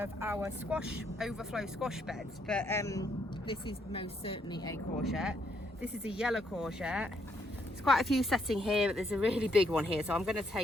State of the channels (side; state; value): both; normal; correlation 0.73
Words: our overflow squash beds, but this is most certainly a courgette. This is a yellow courgette. There's quite a few setting here, but there's a really big one here, so I'm going to